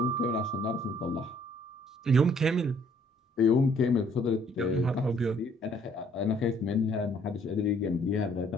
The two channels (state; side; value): normal; both; correlation 0.62